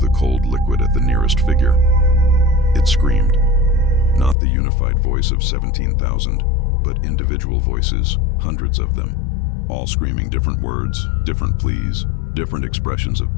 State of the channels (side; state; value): right; drops out; at 4.4 s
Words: cold liquid at the nearest figure. It screamed. Not the unified voice of 17,000, but individual voices, hundreds of them, all screaming different words, different pleas, different expressions of